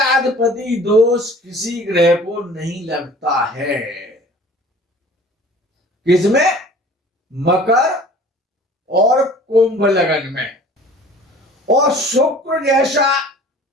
दोष किसी ग्रह को नहीं लगता है। किसमें? मकर और कुंभ लगन में। और शुक्र जैसा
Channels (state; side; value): normal; both; correlation 0.47